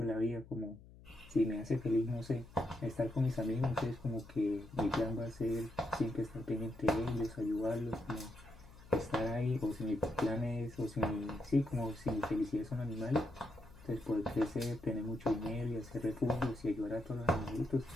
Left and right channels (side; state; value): left; noise; hum, 20 dB below the sound